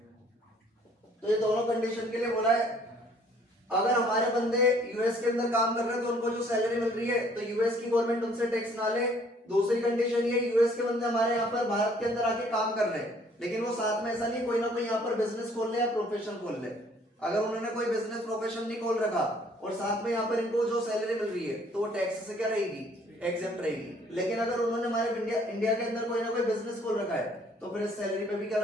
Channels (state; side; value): normal; both; correlation 0.60